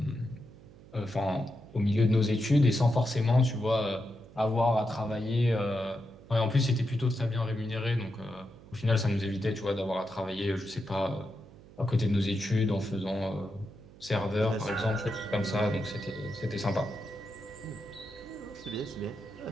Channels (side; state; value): right; noise; hum, 21 dB below the sound